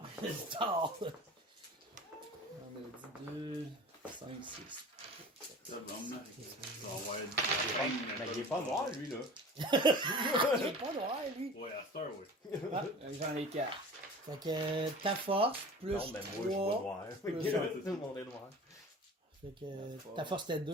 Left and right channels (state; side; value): normal; both; correlation 0.39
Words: Tard! On a dit 2, 5, 6. Ça va emmener. Ça va avoir Mais il est pas noir, lui, là. Il est pas noir, lui. Ouais, à Star, oui. J'en ai 4. Fait que ta force, plus Non, mais moi, je vois 3. noir. plus- Tout le monde est noir. Fait que ta force, c'était